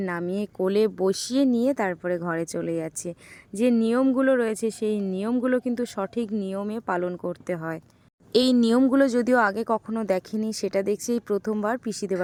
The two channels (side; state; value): both; identical; correlation 1.00